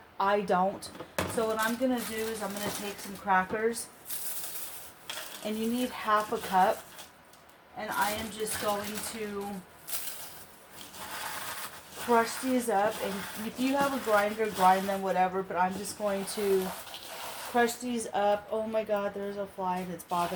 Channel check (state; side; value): identical; both; correlation 1.00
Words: I don't. So what I'm going to do is I'm going to take some crackers. And you need 1/2 cup. And I am just going to crush these up. And if you have a grinder, grind them, whatever. But I'm just going to crush these up. Oh my God, there's a fly that's